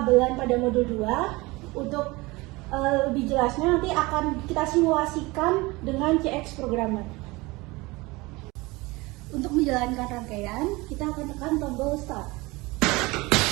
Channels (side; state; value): left; quieter; 22.8 dB